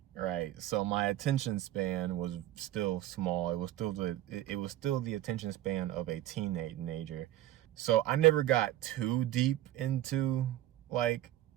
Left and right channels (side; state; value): left; quieter; 13.9 dB